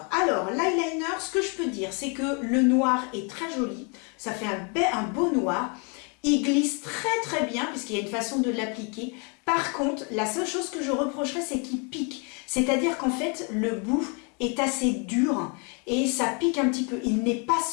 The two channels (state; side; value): quieter; right; 34.9 dB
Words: Alors, l'eyeliner, ce que je peux dire, c'est que le noir est très joli. Ça fait un beau noir. Il glisse très très bien, puisqu'il y a une façon de l'appliquer. Par contre, la seule chose que je reprocherais, c'est qu'il pique. C'est-à-dire qu'en fait, le bout est assez dur et ça pique un petit peu. Il n'est pas